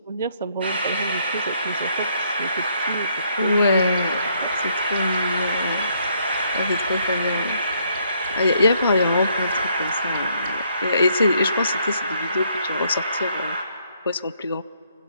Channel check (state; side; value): inverted; both; correlation -0.70